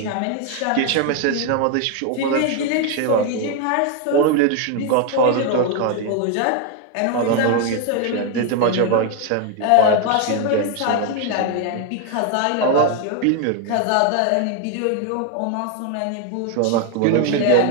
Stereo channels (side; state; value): both; different; correlation 0.01